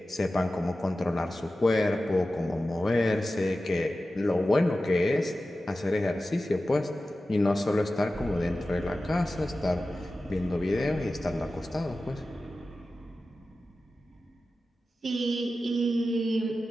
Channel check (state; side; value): normal; both; correlation 0.94